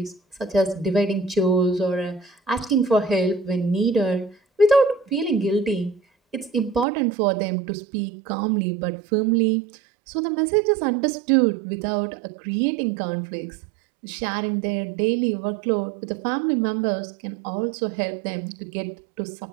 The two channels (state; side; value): drops out; left; at 6.9 s